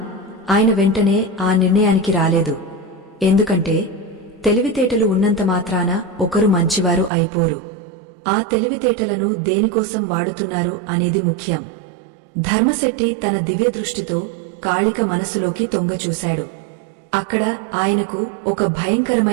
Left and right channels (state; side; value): drops out; left; at 7.1 s